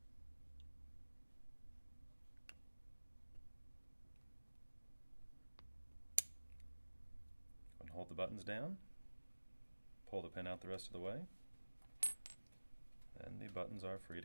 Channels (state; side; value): inverted; both; correlation -1.00